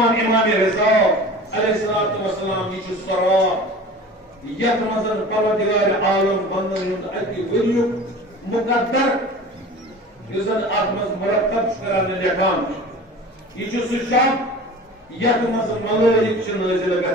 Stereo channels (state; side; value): normal; both; correlation 0.38